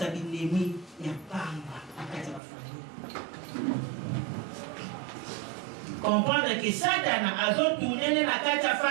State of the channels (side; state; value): left; drops out; at 2.4 s